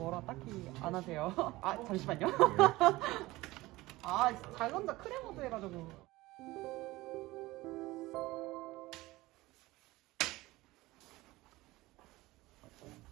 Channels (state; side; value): quieter; left; 19.3 dB